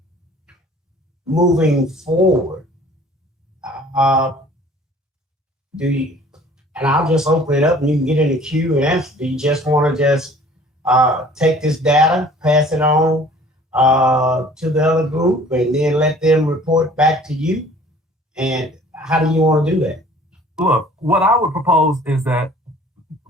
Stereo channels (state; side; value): normal; both; correlation 0.51